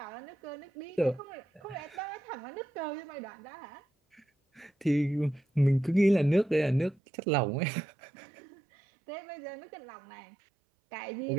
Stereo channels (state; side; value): drops out; left; at 7.0 s